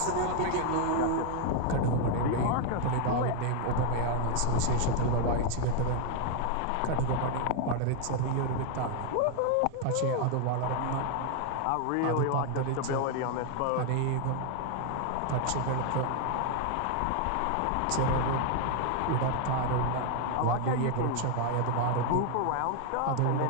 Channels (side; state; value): both; different; correlation 0.00